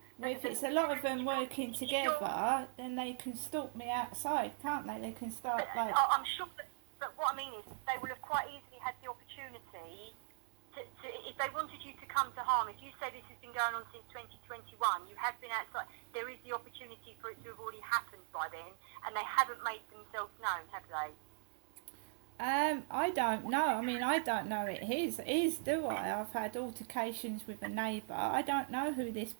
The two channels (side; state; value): left; silent; digital silence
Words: Well, if it's a lot of them working together, then they can stalk me outside, can't they? They can start like... I'm sure, but what I mean is they will have quite easily had the opportunity to, if they wanted you to come to harm, if you say this has been going on since 2021, you have been outside, there is the opportunity for it to have already happened by then, and they haven't made themselves known, have they? I don't know. I mean, I don't know it is, do I? I've had altercations with a neighbour. I don't know who this